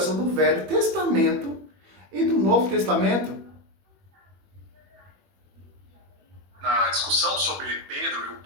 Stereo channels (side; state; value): left; late; 21 ms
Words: do Velho Testamento e do Novo Testamento. Na discussão sobre Pedro e o